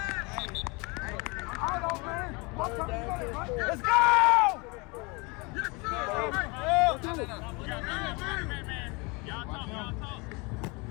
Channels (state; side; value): quieter; right; 28.1 dB